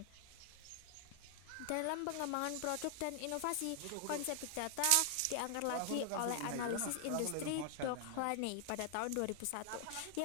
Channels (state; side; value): different; both; correlation 0.00